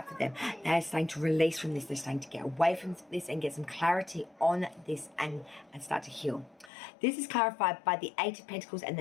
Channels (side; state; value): right; drops out; at 6.7 s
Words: for them, they're starting to release from this. They're starting to get away from this and get some clarity on this and start to heal. This is clarified by the 8 of Pentacles and